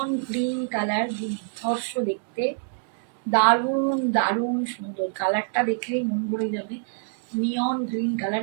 গ্রিন কালার, দুর্ধর্ষ দেখতে, দারুণ দারুণ সুন্দর। কালারটা দেখলেই মন ভরে যাবে। নিয়ন গ্রিন কালার,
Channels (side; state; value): left; silent; digital silence